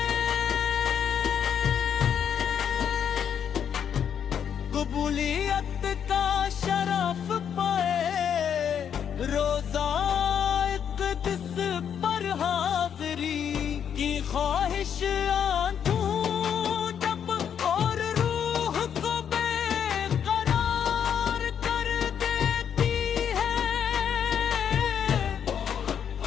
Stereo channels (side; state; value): right; quieter; 8.3 dB